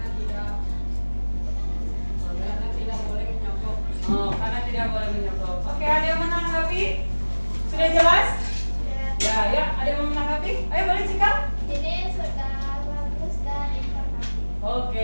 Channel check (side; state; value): both; inverted; correlation -1.00